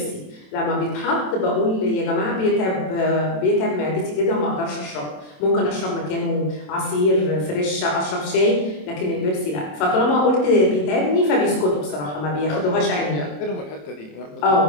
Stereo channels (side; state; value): right; late; 27 ms